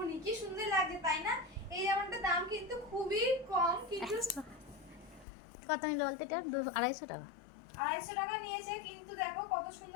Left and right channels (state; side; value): drops out; right; at 5.2 s